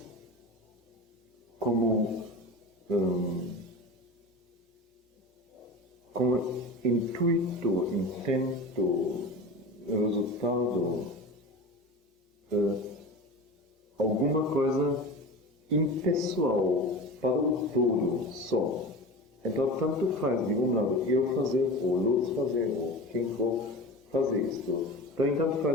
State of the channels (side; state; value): both; normal; correlation 0.31